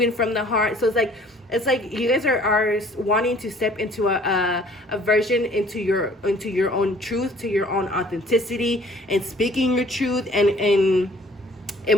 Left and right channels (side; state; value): both; normal; correlation 0.55